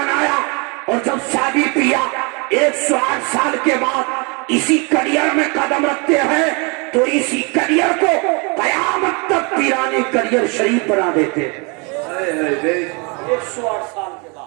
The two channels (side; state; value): left; quieter; 31.7 dB